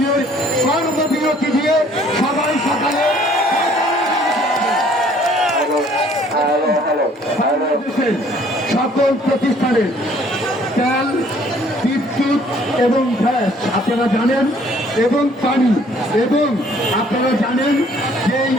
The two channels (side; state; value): both; normal; correlation 0.59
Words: কর্মবিরতি দিয়ে সবাই সকালে বাংলাদেশের সকল প্রতিষ্ঠানের তেল, বিদ্যুৎ এবং গ্যাস আপনারা জানেন, এবং পানি, এবং আপনারা জানেন যেই